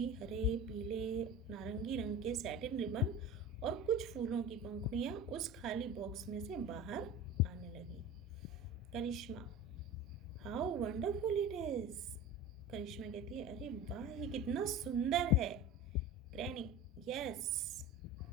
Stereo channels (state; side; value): normal; both; correlation 0.33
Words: हरे, पीले, नारंगी रंग के सैटिन रिबन और कुछ फूलों की पंखुड़ियाँ उस खाली बॉक्स में से बाहर आने लगी. Karishma, how wonderful it is. Karishma कहती है अरे वाह, ये कितना सुंदर है. Granny, yes